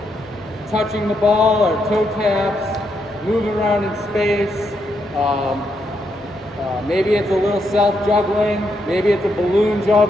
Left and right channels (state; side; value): normal; both; correlation 0.79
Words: touching the ball or toe taps, moving around in space. Maybe it's a little self-juggling, maybe it's a balloon